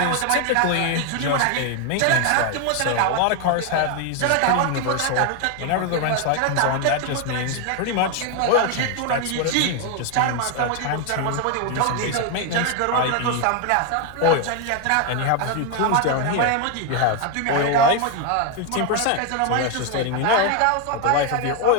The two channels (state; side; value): different; both; correlation 0.01